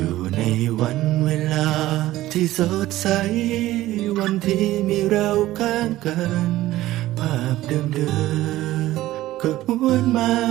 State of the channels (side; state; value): left; quieter; 15.8 dB